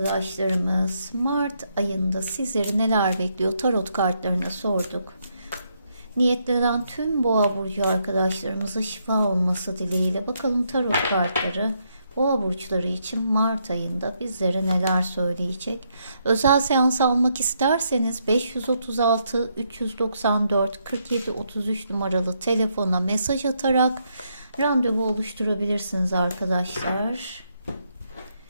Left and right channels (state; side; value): inverted; both; correlation -0.77